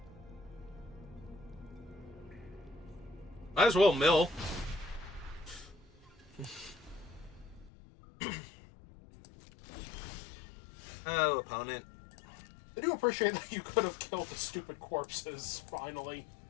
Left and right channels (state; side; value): drops out; right; at 7.7 s